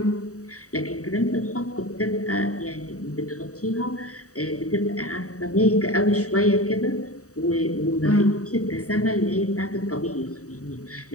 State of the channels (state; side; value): late; right; 0.66 ms